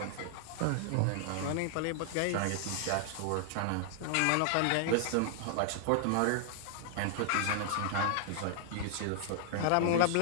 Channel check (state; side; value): different; both; correlation 0.00